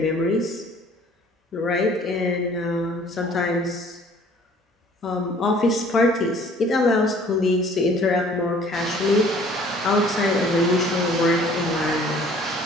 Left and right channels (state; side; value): normal; both; correlation 0.54